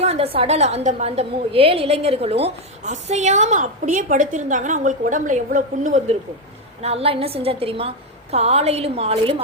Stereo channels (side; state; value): both; normal; correlation 0.06